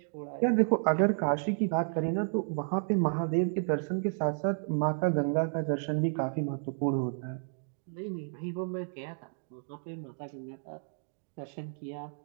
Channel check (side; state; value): left; silent; 57 dB below the other